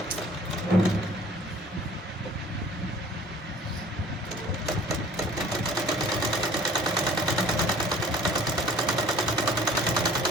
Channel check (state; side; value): normal; both; correlation 0.50